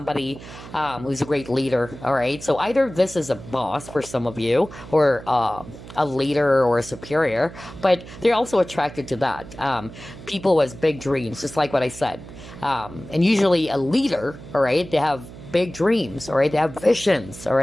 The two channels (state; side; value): noise; right; hum, 15 dB below the sound